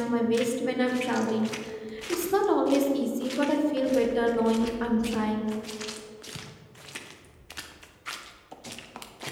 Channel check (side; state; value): both; identical; correlation 1.00